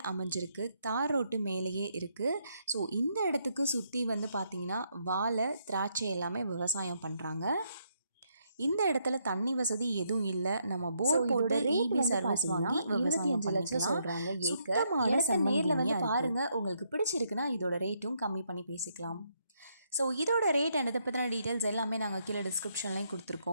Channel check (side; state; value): both; inverted; correlation -0.75